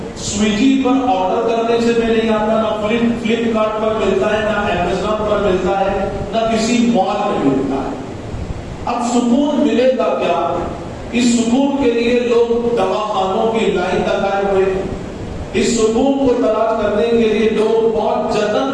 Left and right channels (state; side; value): identical; both; correlation 1.00